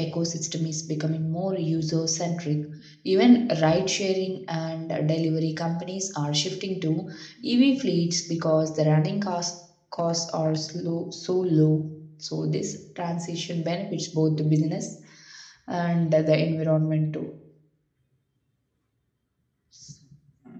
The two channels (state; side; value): identical; both; correlation 1.00